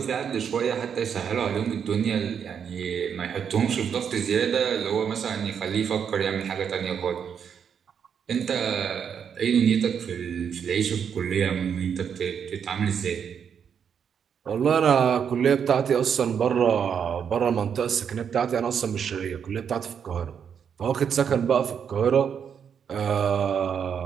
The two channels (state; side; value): quieter; left; 7.6 dB